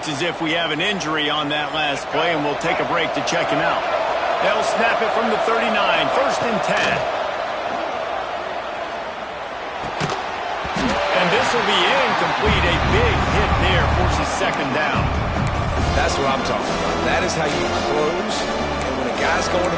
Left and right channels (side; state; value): both; identical; correlation 1.00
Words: as if we have an injury on that last play, and we'll take a break to check him out. They'll snap it from the 39, 1st and 10. And this will be incomplete. A big hit there forces 2nd down. That's what I'm talking about. That is how you close. And when a guy's going